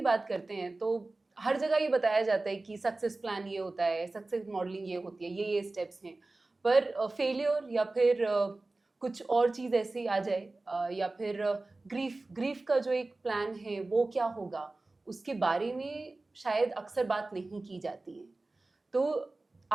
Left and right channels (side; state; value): left; quieter; 3.2 dB